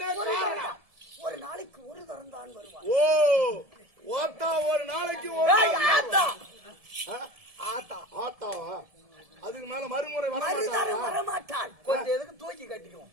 காரணம்? ஒரு நாளைக்கு ஒரு தரம் தான் வருவான். ஓ, ஓத்தா ஒரு நாளைக்கு ஒரு ஆத்தா ஆத்தா ஆத்தாவா? அதுக்கு மேல மறுமுறை மறுதரம் வரமாட்டான். கொஞ்சம் எதுக்கு தூக்கி கட்டிக்குவோம்.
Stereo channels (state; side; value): late; left; 1.7 ms